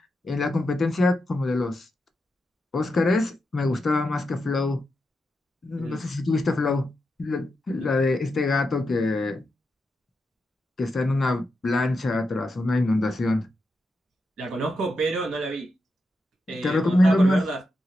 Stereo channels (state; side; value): normal; both; correlation 0.87